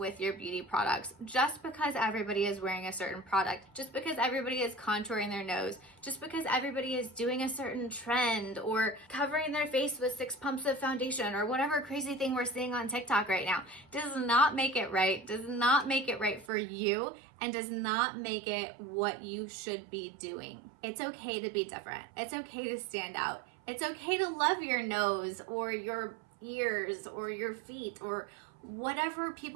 your beauty products. Just because everybody is wearing a certain product, just because everybody is contouring their nose, just because everybody is doing a certain trend or covering their face with 6 pumps of foundation or whatever crazy thing we're seeing on TikTok right now, does not make it right, does not make it right for you, and does not make it what you should be doing. It's okay to be different. It's okay to stand out. It's okay to love your nose or your ears or your feet or whatever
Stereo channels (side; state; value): left; drops out; at 16.5 s